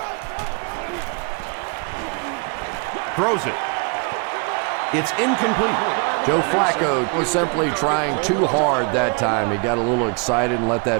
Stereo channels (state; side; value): quieter; left; 34.7 dB